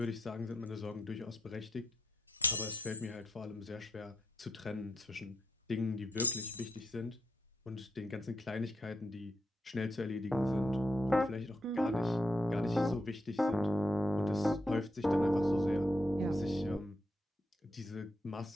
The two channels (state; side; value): normal; both; correlation 0.80